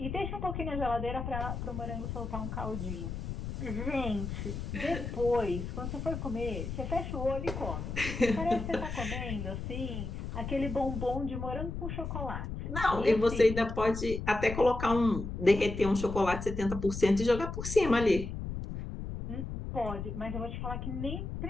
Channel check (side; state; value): left; noise; rumble, 5 dB below the sound